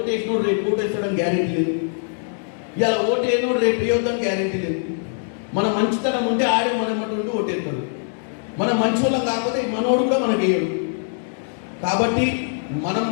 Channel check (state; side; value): silent; right; digital silence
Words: రేపు ఓటేస్తాడని గ్యారెంటీ లేదు, ఇవాళ ఓటేయనోడు రేపు వేయొద్దని గ్యారెంటీ లేదు. మన మంచితనం ఉంటే ఆడే మనటువంటి ఓటేస్తాడు, మన మంచి వాళ్ళం కాకపోతే మనోడు కూడా మనకి వేయడు. కాబట్టి మనం